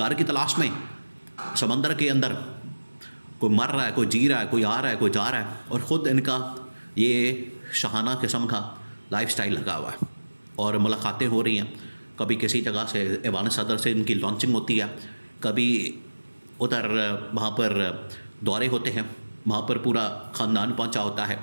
की तलाश में। समंदर के अंदर कोई मर रहा है, कोई जी रहा है, कोई आ रहा है, कोई जा रहा है, और ख़ुद इनका ये शाहाना किस्म का लाइफस्टाइल लगा हुआ है। और मुलाकातें हो रही हैं, कभी किसी जगह से ऐवान सदर से इनकी लॉन्चिंग होती है, कभी उधर वहाँ पर दौरे होते हैं, वहाँ पर पूरा ख़ानदान पहुँचा होता है।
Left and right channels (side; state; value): both; inverted; correlation -1.00